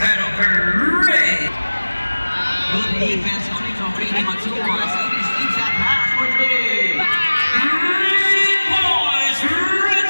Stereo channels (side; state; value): both; inverted; correlation -1.00